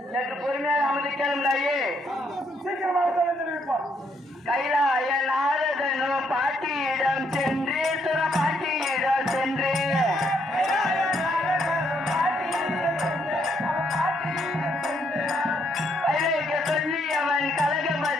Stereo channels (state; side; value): normal; both; correlation 0.72